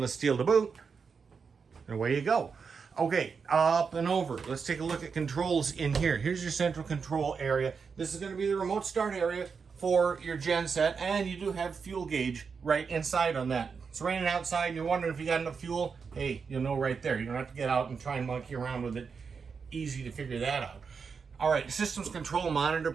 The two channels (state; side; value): quieter; left; 5.6 dB